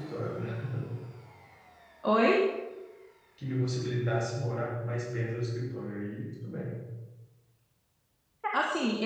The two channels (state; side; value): identical; both; correlation 1.00